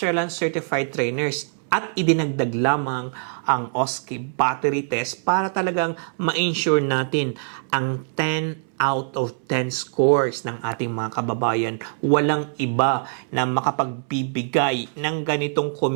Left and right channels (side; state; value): left; silent; 63 dB below the other